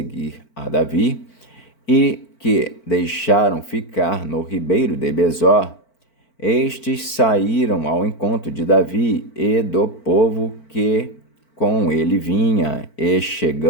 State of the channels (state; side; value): late; right; 4.5 ms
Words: a Davi, e que deixaram ficar no ribeiro de Besor, estes saíram ao encontro de Davi e do povo que com ele vinha, e